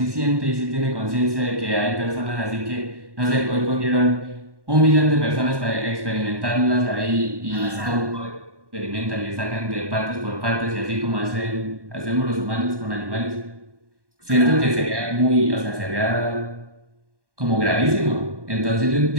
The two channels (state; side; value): late; left; 1.1 ms